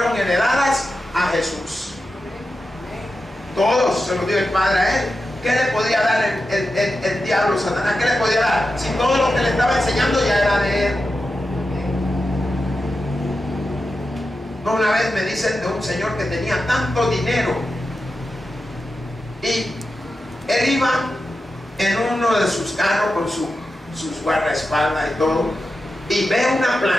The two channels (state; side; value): normal; both; correlation 0.91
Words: heredadas a Jesús. Todos se los dio el Padre a Él. ¿Qué le podía dar el diablo, Satanás? ¿Qué le podía dar? Si todo lo que le estaba enseñando ya era de Él. No, una vez me dicen de un señor que tenía tanto dinero y él iba en uno de sus carros con sus guardaespaldas y todo, y ve una